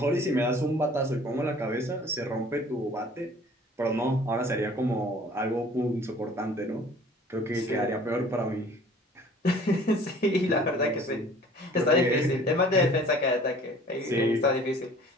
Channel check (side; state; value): both; normal; correlation 0.51